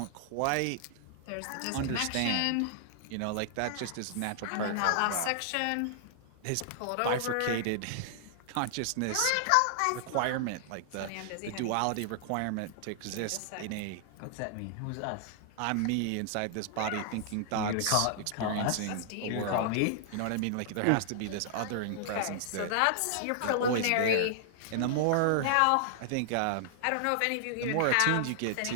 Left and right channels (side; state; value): both; different; correlation -0.01